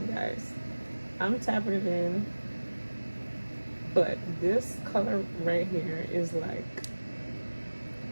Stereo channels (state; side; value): inverted; both; correlation -1.00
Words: guys. I'm tapping it in, but this color right here is like